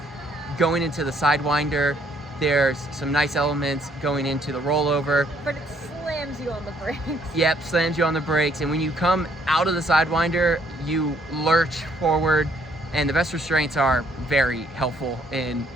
going into the Sidewinder. There's some nice elements going into the rollover. But it slams you on the brakes. Yep, slams you on the brakes, and when you come out of the Sidewinder, you lurch forward, and the best restraints are very helpful in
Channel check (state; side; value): normal; both; correlation 0.67